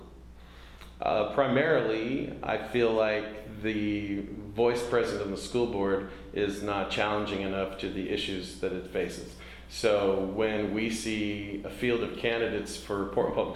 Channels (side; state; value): both; identical; correlation 1.00